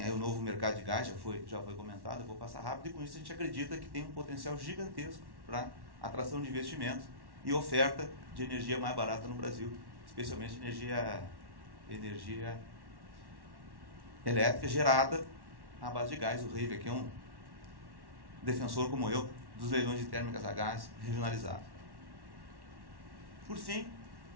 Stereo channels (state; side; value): late; left; 1.1 ms